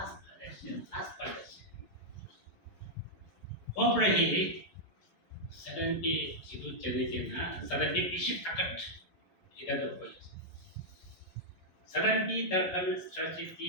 palette Hopefully, suddenly itu cerita suddenly bisik takat ida berpolis. Suddenly terkan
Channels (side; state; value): right; late; 11 ms